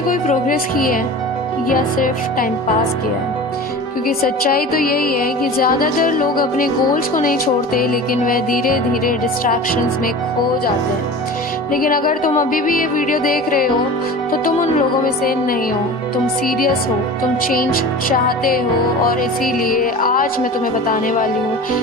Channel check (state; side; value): normal; both; correlation 0.35